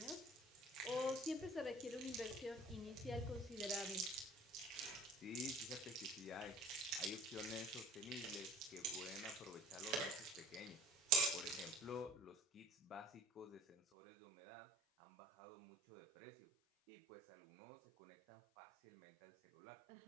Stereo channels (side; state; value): left; drops out; at 13.8 s